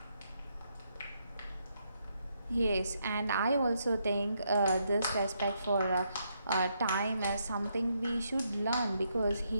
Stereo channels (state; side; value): inverted; both; correlation -0.77